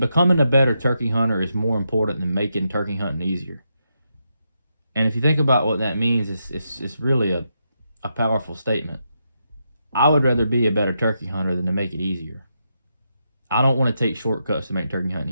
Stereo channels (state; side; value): inverted; both; correlation -0.83